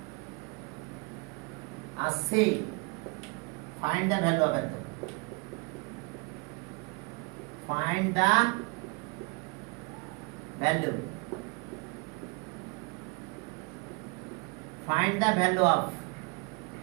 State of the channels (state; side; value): quieter; left; 31.0 dB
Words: R C, find the value of এত। Find the value. Find the value of